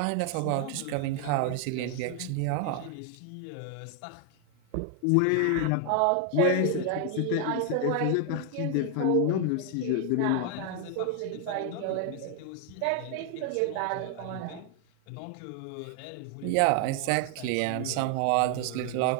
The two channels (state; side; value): different; both; correlation 0.00